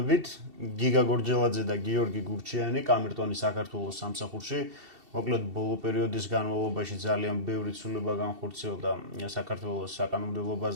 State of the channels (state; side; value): late; left; 2.7 ms